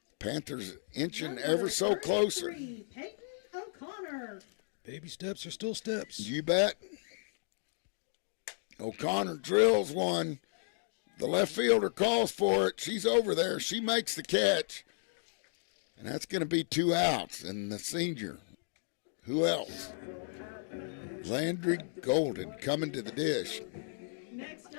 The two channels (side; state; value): right; silent; digital silence